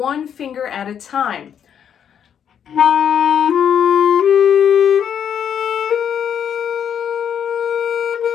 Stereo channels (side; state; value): right; quieter; 8.6 dB